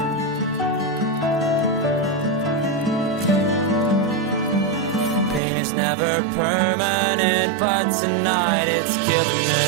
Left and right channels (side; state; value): left; drops out; at 5.4 s